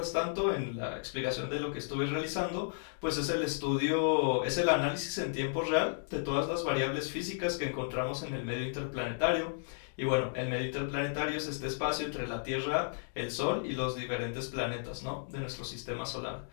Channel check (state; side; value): silent; right; digital silence